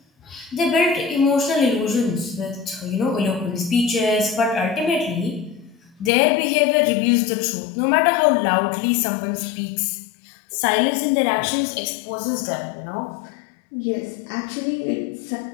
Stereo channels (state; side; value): drops out; right; at 6.1 s